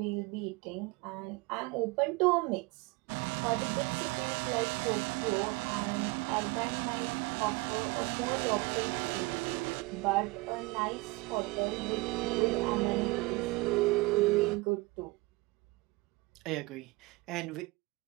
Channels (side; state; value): left; quieter; 23.8 dB